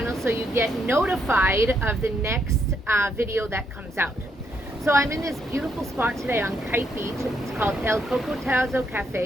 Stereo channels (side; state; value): both; normal; correlation 0.75